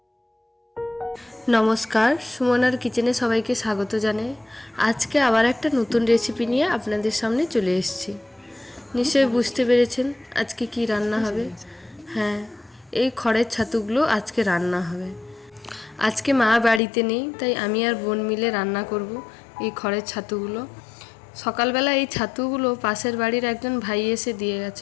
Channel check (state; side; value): drops out; right; at 16.8 s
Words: সুমনার কিচেনে সবাইকে স্বাগত জানাই। আজকে আবার একটা নতুন রেসিপি নিয়ে আপনাদের সামনে চলে এসেছি। নিশ্চয়ই বুঝতে পেরেছেন আজকে কি রান্না হবে। হ্যাঁ, এই খড়ের ছাতুগুলো আজকে রান্না হবে। আজকে মা বাড়িতে নেই, তাই আমি আর বোন মিলে রান্না করব এই খড়ের ছাতুগুলো। সকালবেলা এই ছাতুগুলো পাশের বাড়ির একজন ভাই এসে দিয়ে